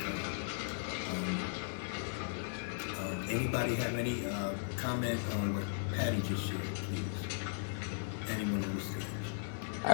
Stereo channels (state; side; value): silent; right; digital silence